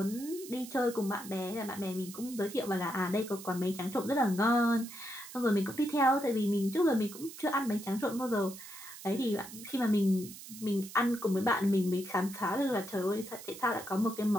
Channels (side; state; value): right; noise; hiss, 14 dB below the sound